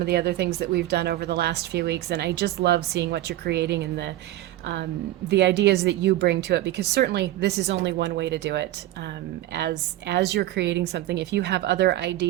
the other things that we've done over the last few weeks, and I just love seeing what you're creating and the ideas that you bring to it, because certainly this is only one way to do it. As you're creating something, if you have other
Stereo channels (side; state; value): left; quieter; 15.0 dB